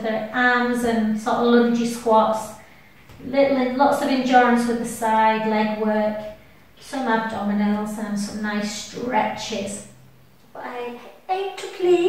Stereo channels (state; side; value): identical; both; correlation 1.00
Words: the arms and sort of lungy squats. Lots of endurance with the side leg work. Some abdominals and some nice stretches. But I aim to